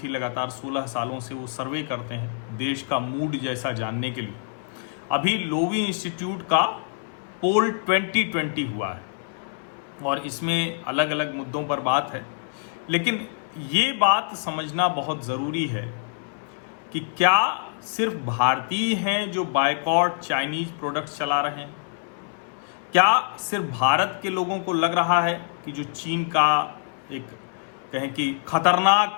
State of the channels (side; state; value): right; silent; 61 dB below the other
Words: लगातार 16 सालों से वो सर्वे करते हैं देश का मूड जैसा जानने के लिए। अभी लोवी इंस्टीट्यूट का पोल 2020 हुआ है और इसमें अलग अलग मुद्दों पर बात है, लेकिन ये बात समझना बहुत ज़रूरी है कि क्या सिर्फ भारतीय हैं जो बायकॉट चाइनीज प्रोडक्ट्स चला रहे हैं? क्या सिर्फ भारत के लोगों को लग रहा है कि जो चीन का एक कहें कि